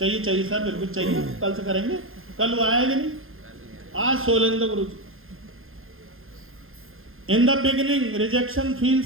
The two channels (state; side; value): late; left; 0.60 ms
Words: चाहिए सर, बिल्कुल चाहिए। कल से करेंगे। कल वो आएगा नहीं, आज Solendra Guru ji. In the beginning rejection